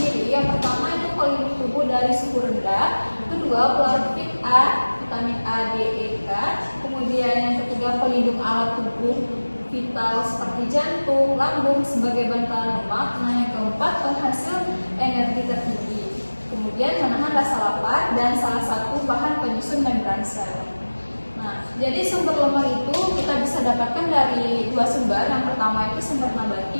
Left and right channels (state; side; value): inverted; both; correlation -1.00